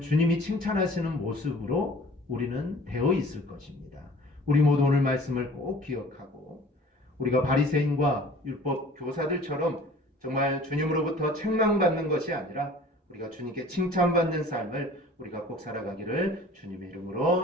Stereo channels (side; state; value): both; normal; correlation 0.47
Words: 주님이 칭찬하시는 모습으로 우리는 되어 있을 것입니다. 우리 모두 오늘 말씀을 꼭 기억하고 우리가 바리새인과 율법 교사들처럼 정말 주님으로부터 책망받는 것이 아니라 우리가 주님께 칭찬받는 삶을 우리가 꼭 살아가기를 주님의